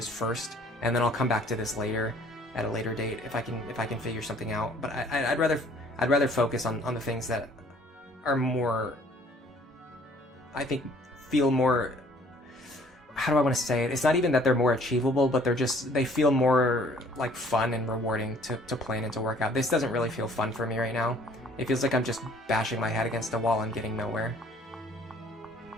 first, and then I'll come back to this later at a later date if I can figure something out. But I'd rather focus on the things that are more, I think, feel more, how do I want to say it? It's not even that they're more achievable, but they feel more like fun and rewarding to plan and to work out. This doesn't really feel fun for me right now. It feels like I'm just bashing my head against the wall and getting nowhere.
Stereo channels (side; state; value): both; normal; correlation 0.57